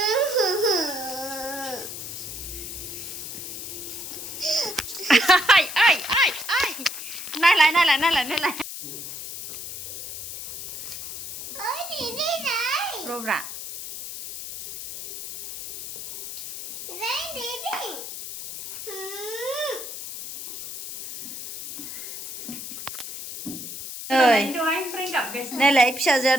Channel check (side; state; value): left; noise; hiss, 9 dB below the sound